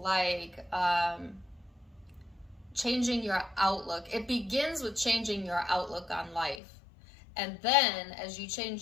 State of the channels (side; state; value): right; drops out; at 6.6 s